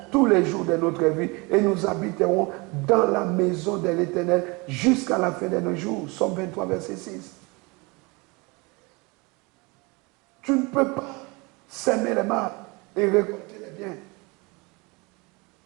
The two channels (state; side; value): quieter; left; 27.0 dB